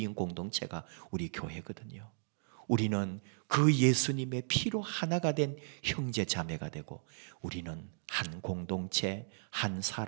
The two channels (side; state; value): left; silent; digital silence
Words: 공동체가 우리 교회거든요. 우리는 그 예수님의 피로 하나가 된 형제 자매가 되고 우리는 한 공동체, 한